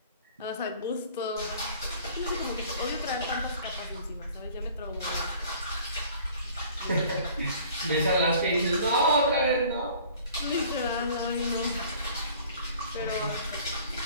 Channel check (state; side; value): inverted; both; correlation -0.50